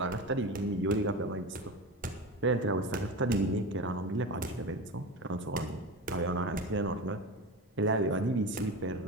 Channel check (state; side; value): normal; both; correlation 0.26